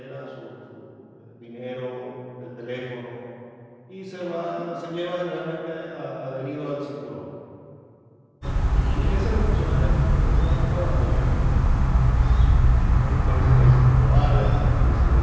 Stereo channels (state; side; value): identical; both; correlation 1.00